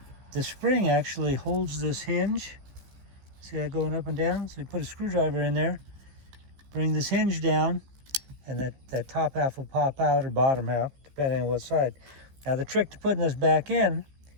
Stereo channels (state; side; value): late; left; 15 ms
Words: the spring actually holds this hinge. See that going up and down? So you put a screwdriver in there, bring this hinge down, and that top half will pop out, or bottom half, depending on what side. Now the trick to putting this back in,